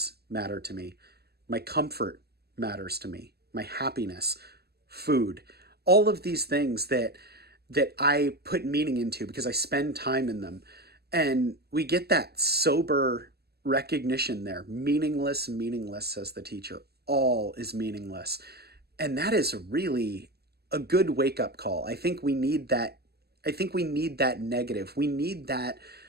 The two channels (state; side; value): late; left; 0.47 ms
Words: matter to me. My comfort matters to me. My happiness, food, all of these things that I put meaning into because I spend time in them. And we get that sober recognition there. Meaningless, meaningless, says the teacher. All is meaningless. And that is really a good wake-up call. I think we need that. I think we need that negative. We need that